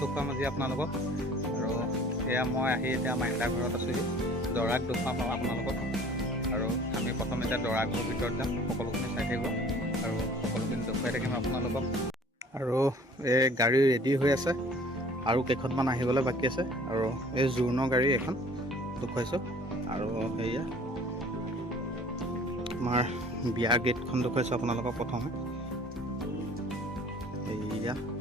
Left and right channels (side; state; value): both; normal; correlation 0.50